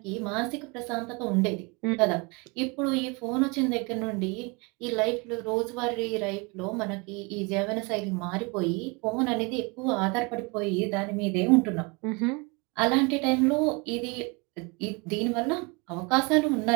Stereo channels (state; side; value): quieter; left; 29.3 dB